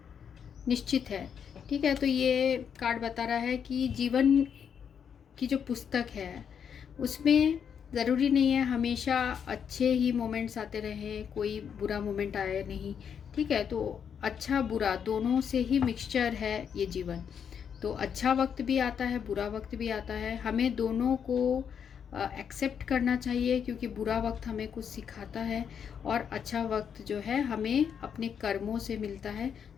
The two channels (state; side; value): quieter; right; 7.6 dB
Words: निश्चित है। ठीक है, तो ये कार्ड बता रहा है कि जीवन की जो पुस्तक है उसमें ज़रूरी नहीं है हमेशा अच्छे ही मोमेंट्स आते रहें, कोई बुरा मोमेंट आए नहीं। ठीक है, तो अच्छा बुरा दोनों से ही मिक्सचर है ये जीवन। तो अच्छा वक्त भी आता है, बुरा वक्त भी आता है, हमें दोनों को एक्सेप्ट करना चाहिए, क्योंकि बुरा वक्त हमें कुछ सिखाता है और अच्छा वक्त जो है हमें अपने कर्मों से मिलता है।